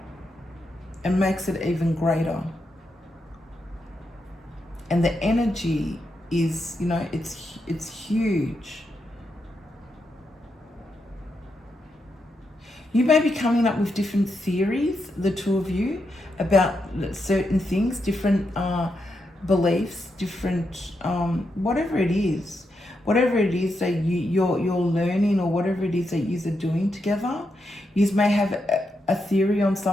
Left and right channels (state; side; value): normal; both; correlation 0.84